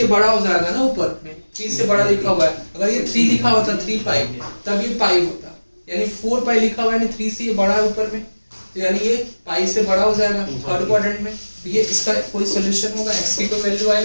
बड़ा हो जाएगा ना, ऊपर में 3 से बड़ा लिखा हुआ है। अगर ये 3 लिखा होता 3π तब ये पाई होता, यानी 4π लिखा हुआ है यानी 3 से ये बड़ा है ऊपर में, तो यानी ये पाई से बड़ा हो जाएगा थर्ड क्वाड्रेंट में। तो ये इसका कोई सॉल्यूशन होगा? x की कोई वैल्यू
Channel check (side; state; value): both; inverted; correlation -1.00